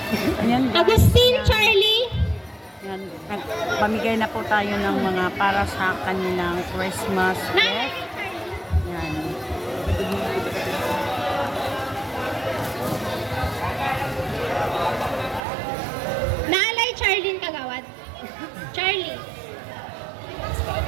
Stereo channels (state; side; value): drops out; left; at 15.4 s